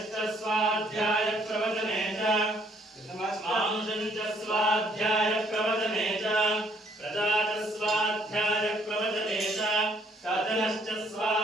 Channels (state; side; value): normal; both; correlation 0.65